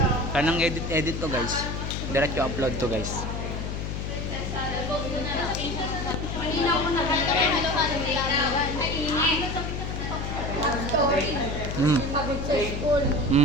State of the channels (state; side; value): noise; left; hum, 4 dB below the sound